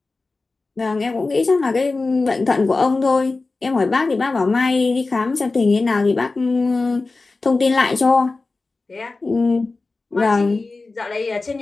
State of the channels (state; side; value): quieter; right; 3.6 dB